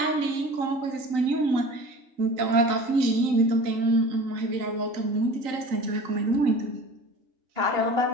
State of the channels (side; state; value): left; late; 3.8 ms